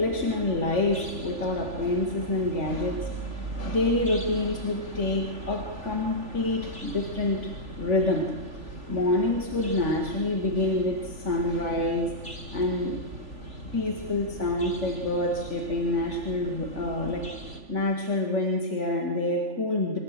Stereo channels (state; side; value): late; left; 3.5 ms